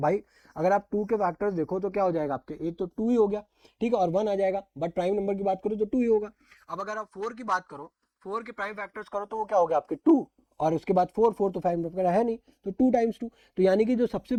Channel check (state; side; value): identical; both; correlation 1.00